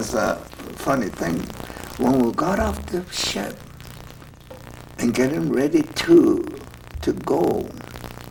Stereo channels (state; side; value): identical; both; correlation 1.00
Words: a funny thing. When we got off the ship and getting ready to go